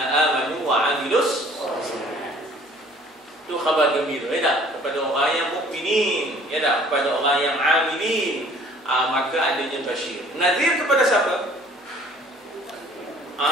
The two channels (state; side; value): normal; both; correlation 0.54